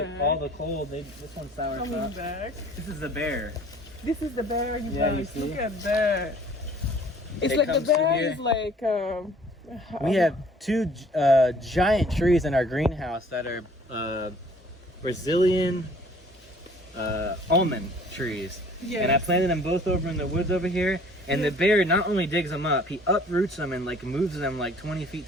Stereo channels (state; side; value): normal; both; correlation 0.54